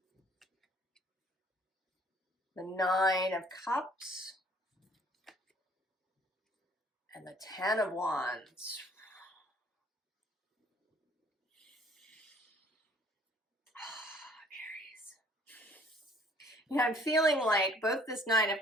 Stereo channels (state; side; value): normal; both; correlation 0.57